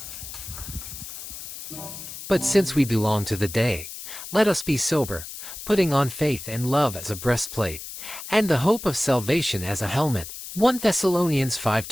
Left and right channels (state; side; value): noise; left; hiss, 11 dB below the sound